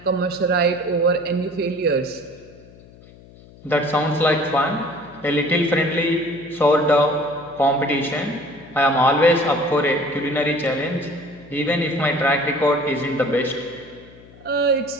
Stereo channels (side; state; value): left; noise; hum, 23 dB below the sound